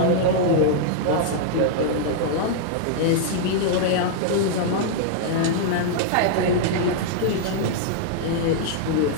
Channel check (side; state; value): both; different; correlation -0.01